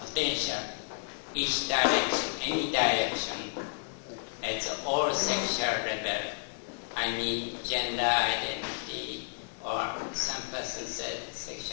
each direction, any direction, at all sexual level. I mean gender identity, or some person said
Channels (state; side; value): silent; right; digital silence